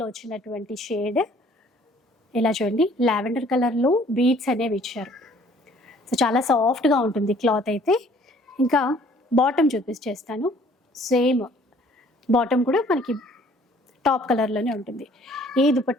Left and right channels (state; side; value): normal; both; correlation 0.57